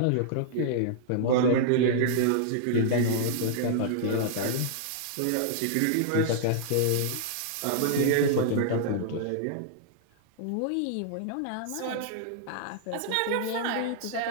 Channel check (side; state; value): both; different; correlation -0.01